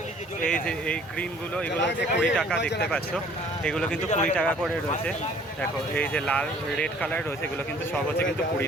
এই যে এই গ্রিনগুলো, এগুলো হচ্ছে 20 টাকা, দেখতে পাচ্ছ। এগুলো কিন্তু 20 টাকা করে রয়েছে। দেখো এই যে লাল রেড কালার রয়েছে, এগুলো কিন্তু সব হচ্ছে কিন্তু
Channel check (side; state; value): both; normal; correlation 0.55